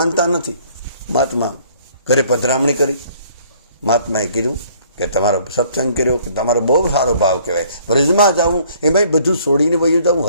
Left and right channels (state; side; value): inverted; both; correlation -0.59